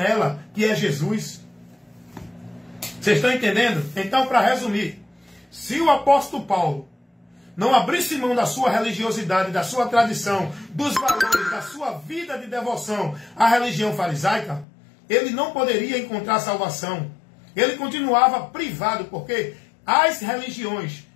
que é Jesus. Vocês estão entendendo? Então, para resumir, se o apóstolo Paulo não abrisse mão da sua religiosidade, da sua tradição, dos valores, da sua vida de devoção à religião farisaica, ele não poderia encontrar salvação. Ele continuava privado, porque as religiões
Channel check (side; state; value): right; drops out; at 14.7 s